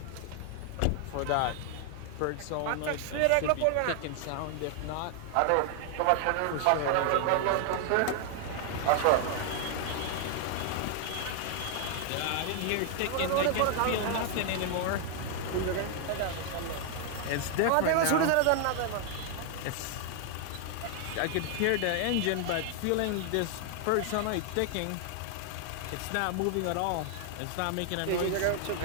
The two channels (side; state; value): both; different; correlation 0.00